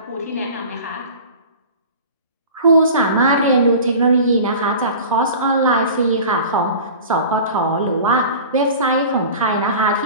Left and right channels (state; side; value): inverted; both; correlation -0.38